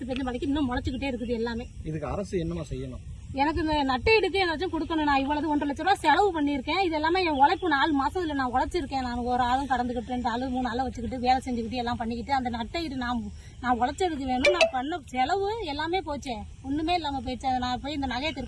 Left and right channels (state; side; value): identical; both; correlation 1.00